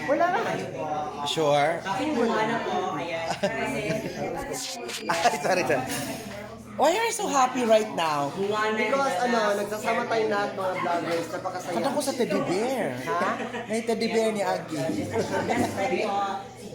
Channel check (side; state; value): both; identical; correlation 1.00